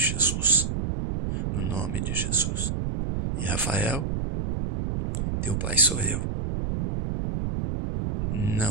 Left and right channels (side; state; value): right; noise; rumble, 2 dB below the sound